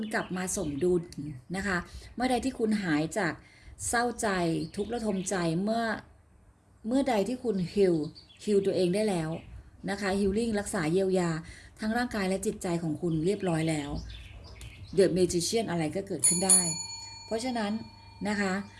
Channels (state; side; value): identical; both; correlation 1.00